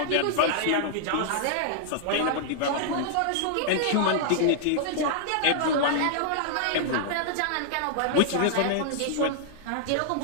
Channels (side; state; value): both; different; correlation -0.01